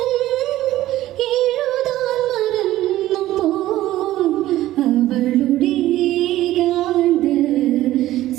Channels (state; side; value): quieter; left; 14.9 dB